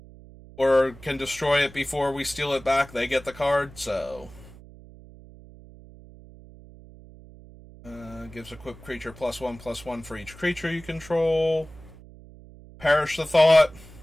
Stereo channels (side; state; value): right; noise; hum, 20 dB below the sound